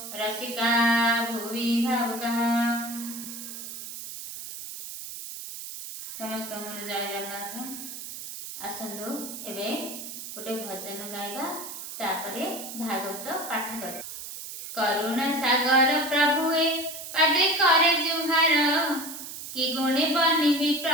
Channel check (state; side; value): noise; right; hiss, 10 dB below the sound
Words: रसिका भुवि भावुकाः। समस्त मन जय जगन्नाथ। आसंदु एबे गोटे भजन गाइबा तापरे भागवत पाठ कर। करुणा सागर प्रभुए पादे करे जुहार कि गुणे बनिबि